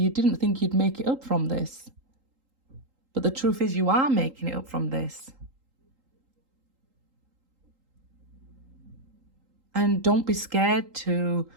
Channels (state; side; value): late; left; 3.8 ms